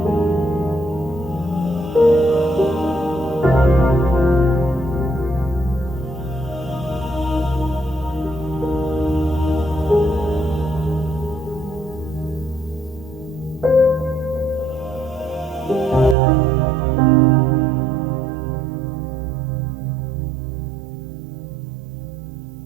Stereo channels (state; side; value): drops out; left; at 16.2 s